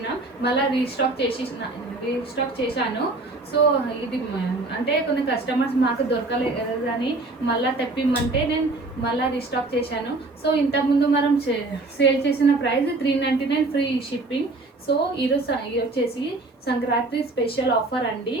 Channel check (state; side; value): quieter; left; 3.2 dB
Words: మళ్ళీ రీస్టాక్ చేశాను. సో ఇది అంటే కొన్ని కస్టమర్స్ మాకు దొరకలేదని మళ్ళీ తెప్పిమ్మంటే నేను మళ్ళీ రీస్టాక్ చేశాను. సో ఇంతకుముందు మనం సేల్ చేసిన ప్రైస్ 399 ఫ్రీ షిప్పింగ్. సో ఈరోజు వచ్చేసి సంక్రాంతి స్పెషల్ ఆఫర్ అండి.